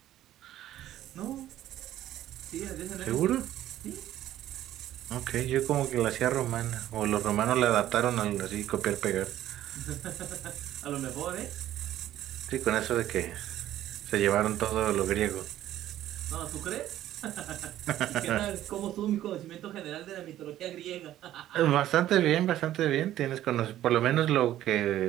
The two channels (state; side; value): quieter; left; 13.0 dB